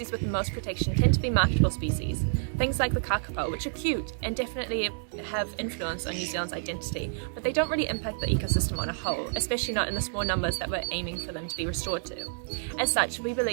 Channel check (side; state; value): left; silent; digital silence